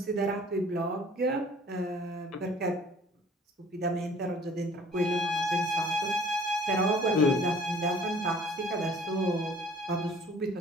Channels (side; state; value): both; normal; correlation 0.51